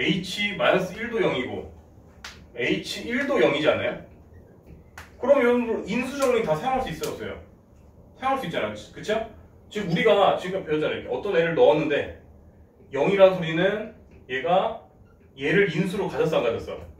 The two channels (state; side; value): identical; both; correlation 1.00